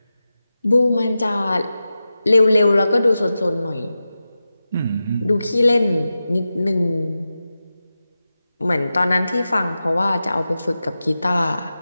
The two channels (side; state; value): both; inverted; correlation -0.93